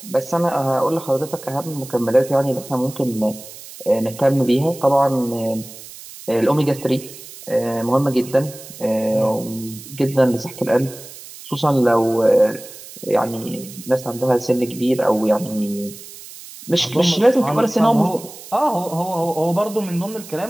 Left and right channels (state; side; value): noise; right; hiss, 16 dB below the sound